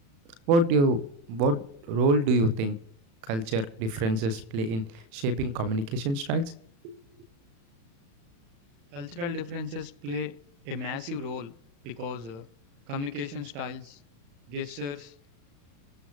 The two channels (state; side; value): late; left; 35 ms